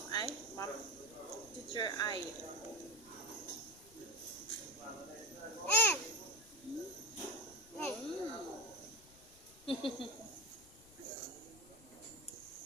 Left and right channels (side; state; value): left; noise; rumble, 22 dB below the sound